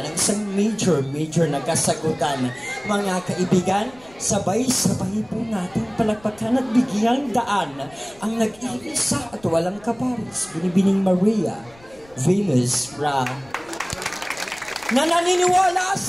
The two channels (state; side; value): noise; left; rumble, 26 dB below the sound